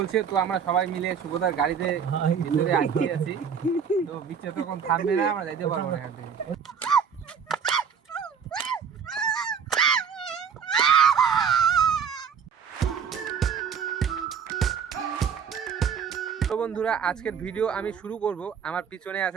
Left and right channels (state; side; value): quieter; left; 7.0 dB